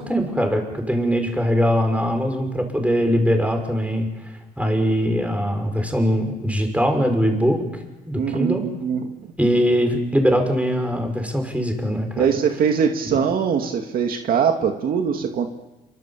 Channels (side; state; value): both; normal; correlation 0.74